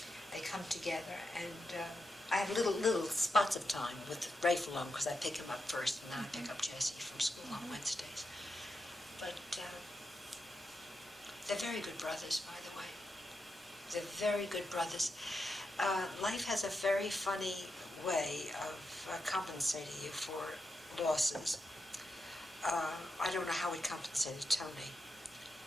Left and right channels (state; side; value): normal; both; correlation 0.87